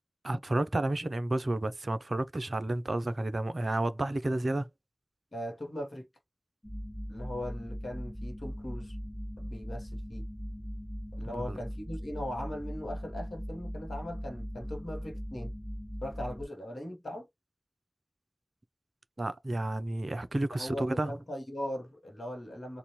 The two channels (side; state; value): both; normal; correlation 0.97